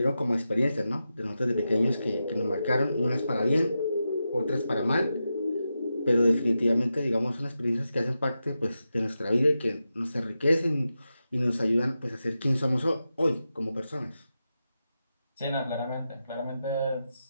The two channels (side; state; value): both; inverted; correlation -0.90